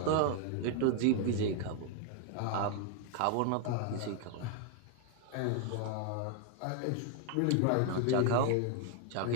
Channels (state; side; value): different; both; correlation 0.00